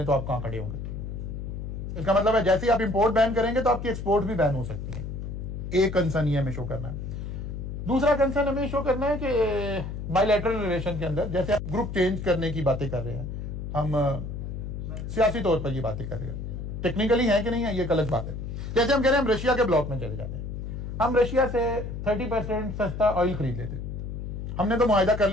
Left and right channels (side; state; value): left; noise; hum, 6 dB below the sound